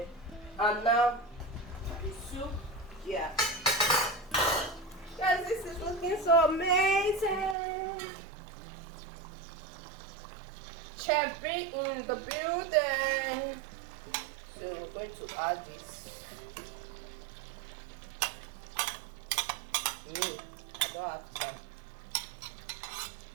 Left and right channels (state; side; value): drops out; left; at 7.6 s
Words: and now the soup. Yeah, guys, this is looking so amazing. Chef B in the building. So we're going to add this. I don't have time.